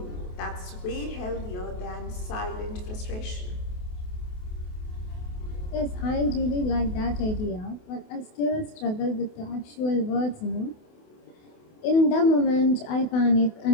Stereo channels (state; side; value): late; right; 28 ms